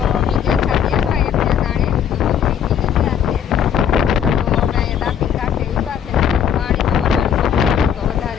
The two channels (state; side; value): quieter; right; 8.6 dB